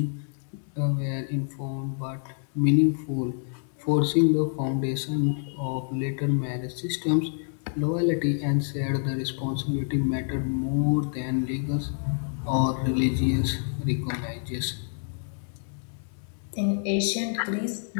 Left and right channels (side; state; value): right; silent; 60 dB below the other